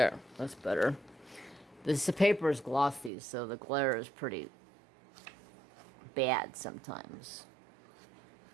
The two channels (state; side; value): drops out; left; at 3.1 s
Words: that's better. The paper is glossy, so the glare is pretty bad sometimes.